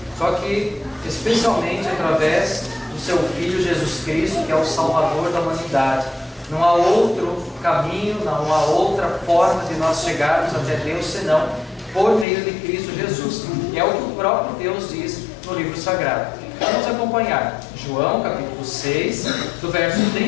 só que especialmente através do seu Filho Jesus Cristo, que é o Salvador da humanidade. Não há outro caminho, não há outra forma de nós chegarmos até Deus senão por meio de Cristo Jesus. E é o que o próprio Deus diz no livro sagrado. Vamos acompanhar João capítulo 6, do verso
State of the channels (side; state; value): right; drops out; at 12.2 s